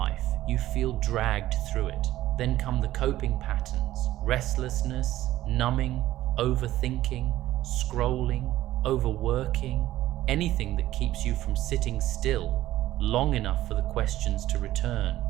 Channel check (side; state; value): left; quieter; 14.7 dB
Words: you feel dragged through it. Then come the coping patterns: restlessness, numbing, overthinking, scrolling, overworking, anything that keeps you from sitting still long enough for the questions to return.